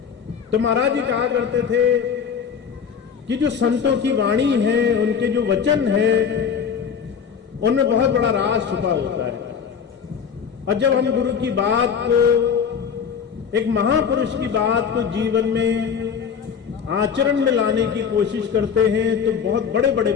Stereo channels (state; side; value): quieter; right; 7.0 dB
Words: तो महाराज जी कहा करते थे कि जो संतों की वाणी है, उनके जो वचन है, उनमें बहुत बड़ा राज छुपा होता है। और जब हम गुरु की बात को, एक महापुरुष की बात को जीवन में आचरण में लाने की कोशिश करते हैं तो बहुत बड़े बड़े